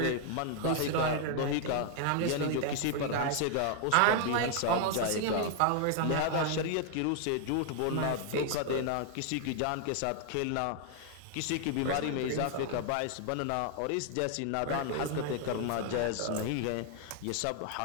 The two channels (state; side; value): different; both; correlation 0.00